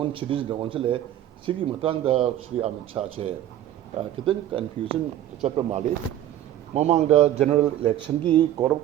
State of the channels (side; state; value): left; quieter; 12.2 dB